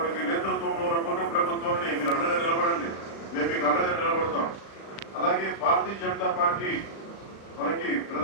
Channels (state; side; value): late; right; 36 ms